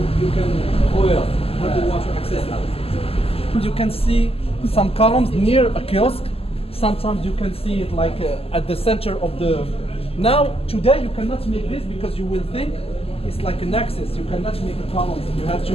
have the water accessible. You can see some columns near a kiosk. Sometimes you can see it like at the center of the. Now today you cannot make this because you will think it's like an axis. You cannot make a column. You have to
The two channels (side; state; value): right; late; 0.28 ms